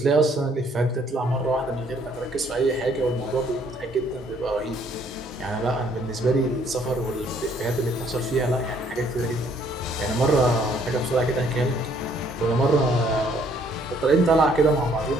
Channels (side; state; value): both; normal; correlation 0.64